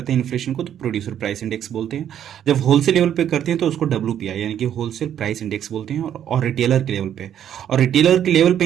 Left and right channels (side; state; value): left; quieter; 10.0 dB